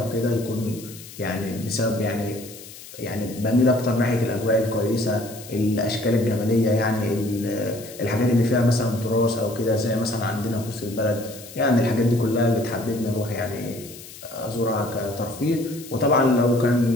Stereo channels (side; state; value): left; noise; hiss, 16 dB below the sound